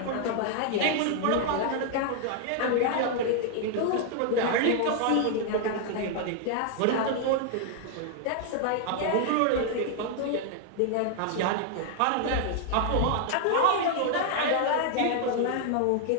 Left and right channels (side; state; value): both; different; correlation 0.00